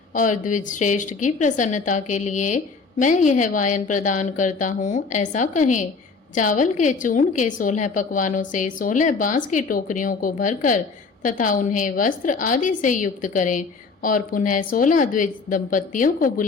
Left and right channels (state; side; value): quieter; right; 4.5 dB